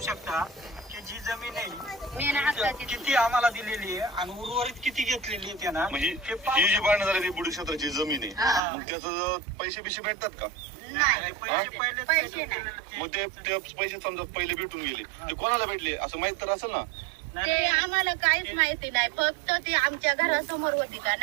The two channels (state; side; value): drops out; left; at 8.6 s